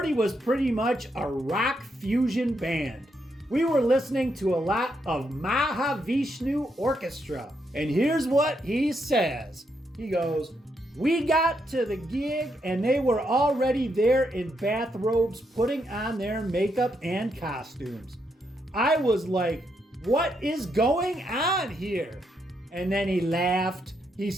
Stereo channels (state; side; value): normal; both; correlation 0.79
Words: was pretty much a rock fusion band. We were listening to a lot of Mahavishnu Orchestra. And here's what he says. He goes, we got to the gig and they were already there in bathrobes putting on their makeup and costumes. I was like, what is going on here? And then he laughed. He